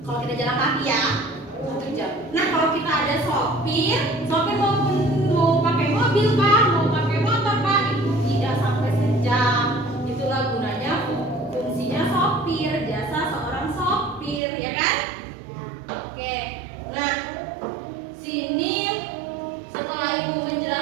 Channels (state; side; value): drops out; left; at 14.4 s